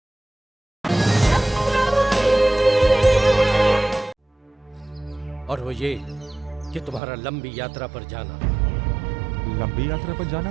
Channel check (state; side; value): drops out; left; at 7.0 s